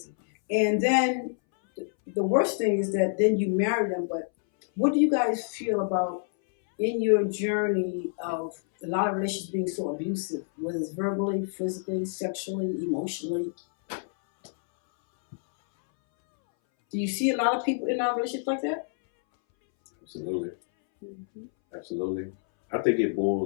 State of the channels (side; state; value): right; silent; 60 dB below the other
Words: And then the worst thing is that then you marry them. But what do you guys feel about in your journey of a lot of relationships being so abusive, whether it's verbally, physically, sexually, emotionally? Do you see a lot of people in our relationships like that? Absolutely. Mm-hmm. Absolutely. I think it